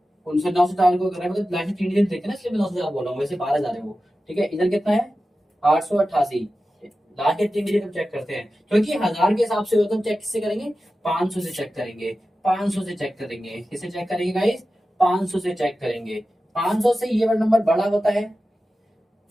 उनसे 904 को कर रहे हैं, मतलब लास्ट 3 डिजिट देखे ना, इसलिए मैं 904 बोल रहा हूँ, वैसे 12 है वो। ठीक है, इधर कितना है 888, लास्ट के 3 डिजिट हम चेक करते हैं, क्योंकि हजार के हिसाब से होता है। हम चेक किससे करेंगे, 500 से चेक करेंगे, 500 से चेक करेंगे। किससे चेक करेंगे गाइस, 500 से चेक करेंगे। 500 से ये वाला नंबर बड़ा होता है,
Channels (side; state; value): both; normal; correlation 0.93